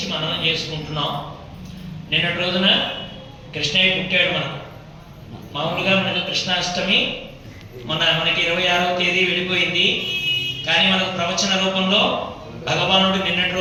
మననం చేసుకుంటున్నాం. నిన్నటి రోజున కృష్ణయ్య పుట్టాడు. మామూలుగా మనకు కృష్ణాష్టమి మనకి 26వ తేదీ వెళ్ళిపోయింది. కానీ మనకు ప్రవచన రూపంలో భగవానుడు నిన్నటి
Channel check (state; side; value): identical; both; correlation 1.00